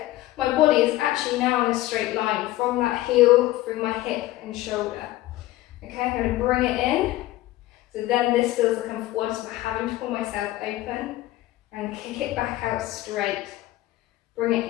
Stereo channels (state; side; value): quieter; right; 16.5 dB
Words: my body is actually now in a straight line from that heel through my hip and shoulder. Okay, I'm going to bring it in. So then this feels like I'm forward, so I'm having to pull myself open and kick it back out straight. Bring it